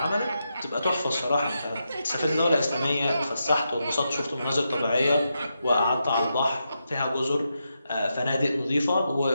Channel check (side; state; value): both; inverted; correlation -0.85